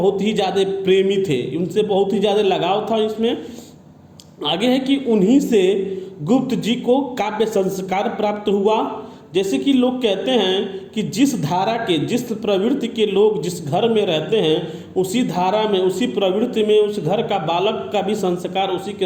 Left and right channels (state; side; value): identical; both; correlation 1.00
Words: ही ज़्यादा प्रेमी थे, उनसे बहुत ही ज़्यादा लगाव था। इसमें आगे है कि उन्हीं से गुप्त जी को काव्य संस्कार प्राप्त हुआ। जैसे कि लोग कहते हैं कि जिस धारा के, जिस प्रवृत्ति के लोग जिस घर में रहते हैं, उसी धारा में, उसी प्रवृत्ति में उस घर का बालक का भी संस्कार उसी